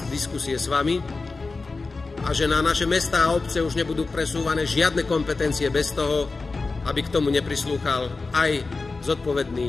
diskusie s vami a že na naše mestá a obce už nebudú presúvané žiadne kompetencie bez toho, aby k tomu neprislúchal aj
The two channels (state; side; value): quieter; right; 3.8 dB